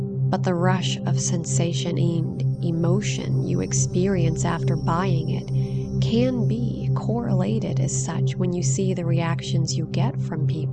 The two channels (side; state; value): both; identical; correlation 1.00